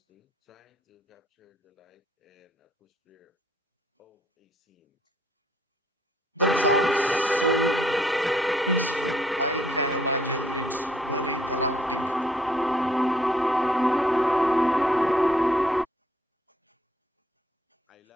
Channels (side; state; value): both; normal; correlation 0.65